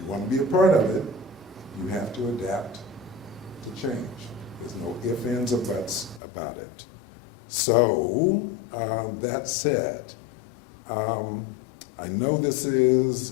want to be a part of it, you have to adapt to change. There's no ifs, ands, or buts about it. So, that said, I know this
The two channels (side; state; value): right; drops out; at 6.2 s